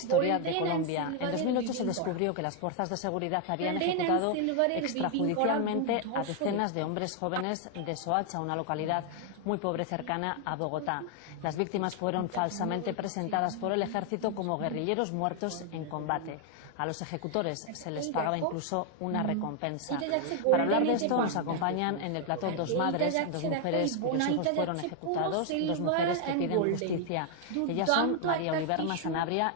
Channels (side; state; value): both; different; correlation 0.00